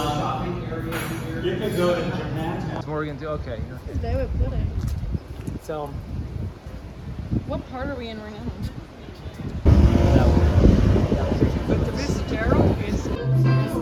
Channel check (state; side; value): identical; both; correlation 1.00